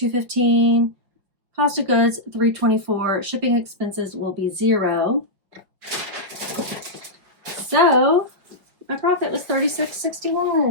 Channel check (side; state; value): left; late; 5.2 ms